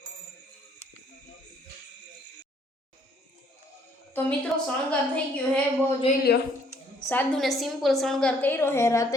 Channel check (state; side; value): normal; both; correlation 0.64